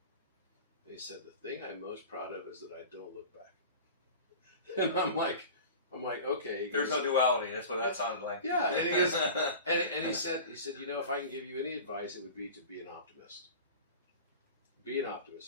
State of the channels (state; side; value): inverted; both; correlation -0.36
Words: And he said, the thing I'm most proud of is that I don't look back. And I'm like, okay. There's no duality. That's what that sounded like. Yeah, and he goes, and he said, if I can give you any advice, it would be to be an optimist. Be an